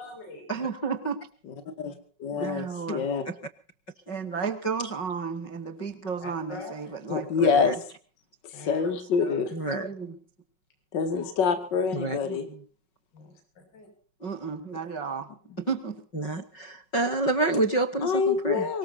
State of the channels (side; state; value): right; late; 5.4 ms